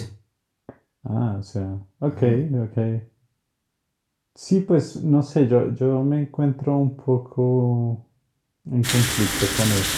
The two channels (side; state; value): both; identical; correlation 1.00